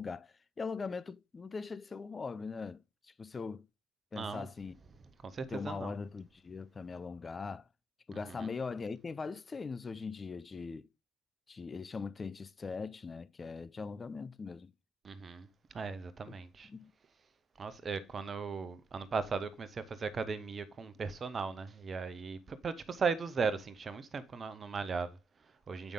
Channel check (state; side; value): normal; both; correlation 0.81